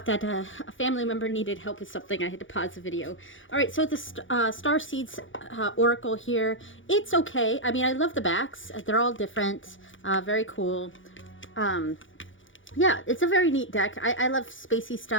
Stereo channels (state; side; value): late; right; 0.56 ms